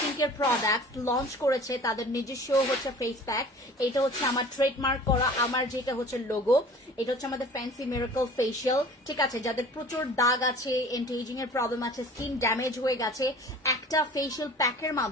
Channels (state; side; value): normal; both; correlation 0.45